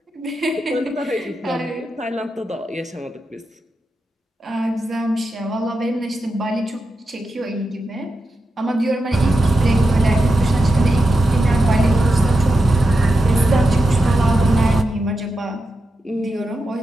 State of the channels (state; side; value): normal; both; correlation 0.89